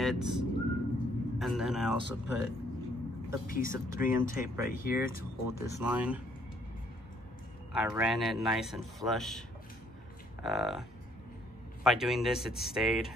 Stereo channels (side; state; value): both; normal; correlation 0.65